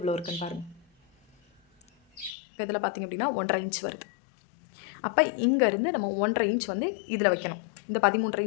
இருக்குன்னு பாருங்கள். இப்போ இதில் பார்த்திங்க அப்படின்னா 1.5 இன்ச் வருது. அப்போ இங்கேருந்து நம்ம 1.5 இன்ச் வந்து இதில் வைக்கணும். இந்த 13.5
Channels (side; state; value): right; drops out; at 2.3 s